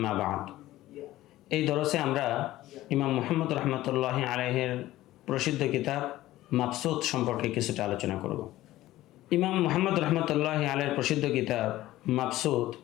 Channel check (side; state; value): right; quieter; 15.7 dB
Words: بعد. এই দরসে আমরা ইমাম মুহাম্মদ রহমতুল্লাহি আলাইহির প্রসিদ্ধ কিতাব মাবসুত সম্পর্কে কিছুটা আলোচনা করব। ইমাম মুহাম্মদ রহমতুল্লাহি আলাইহির প্রসিদ্ধ কিতাব মাবসুত